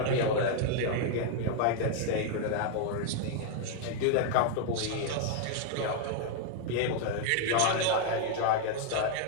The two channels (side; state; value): both; different; correlation 0.00